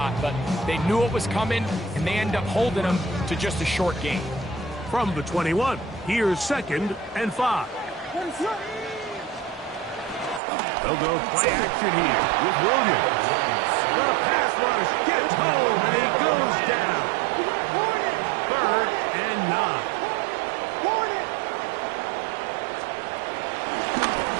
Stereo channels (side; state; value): left; drops out; at 10.4 s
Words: but they knew it was coming, and they end up holding them to just a short gain. From the 21, here's 2nd and 5. They'll go play action here with Williams. The pass rush gets home, and he goes down. 3rd and 9.